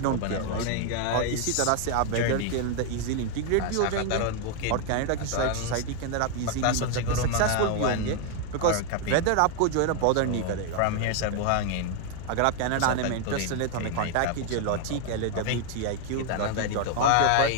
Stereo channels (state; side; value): different; both; correlation 0.00